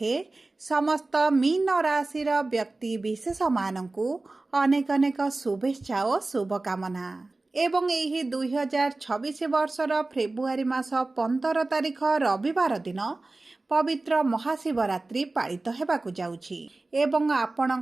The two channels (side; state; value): left; quieter; 3.2 dB